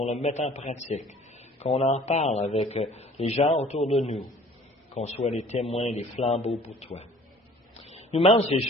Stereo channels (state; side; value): normal; both; correlation 0.52